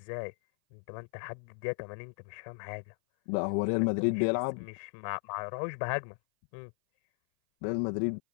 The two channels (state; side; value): silent; right; 54 dB below the other